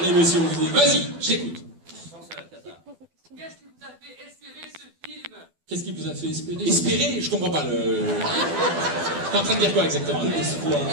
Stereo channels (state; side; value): late; left; 12 ms